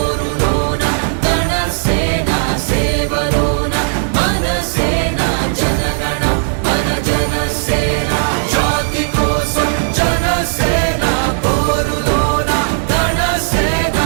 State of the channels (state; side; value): silent; left; digital silence